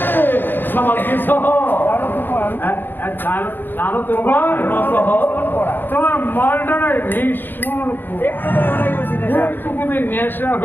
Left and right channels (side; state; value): right; late; 0.094 ms